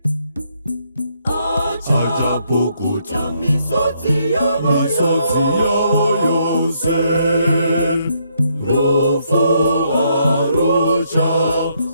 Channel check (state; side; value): inverted; both; correlation -0.73